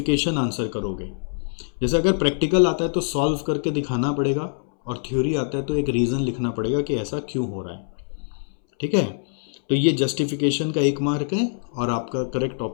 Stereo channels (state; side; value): silent; right; 63 dB below the other